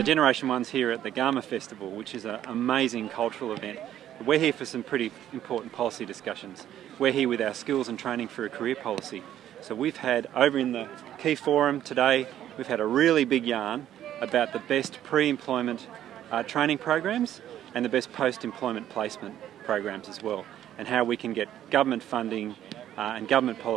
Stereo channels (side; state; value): left; quieter; 11.5 dB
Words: So GenerationOne's here at the Garma Festival, which is an amazing cultural event. We're here for some pretty important policy discussions. We're here with our skills and training for a career policy. So we've had, over in the key forum today, we've had a really big yarn about the best pre-employment training programs and the best post-employment placement programs as well, and how we can get government funding and government